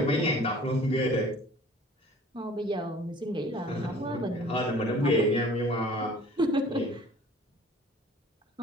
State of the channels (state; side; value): normal; both; correlation 0.49